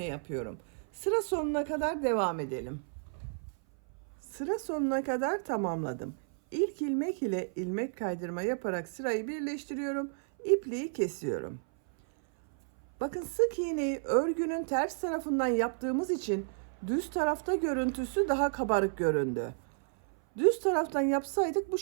yapıyorum. Sıra sonuna kadar devam edelim. Sıra sonuna kadar tamamladım. İlk ilmek ile ilmek kaydırma yaparak sırayı birleştiriyorum. İpliği kesiyorum. Bakın sık iğneyi örgünün ters tarafından yaptığımız için düz tarafta görüntüsü daha kabarık göründü. Düz taraftan yapsaydık bu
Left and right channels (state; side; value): silent; left; 56 dB below the other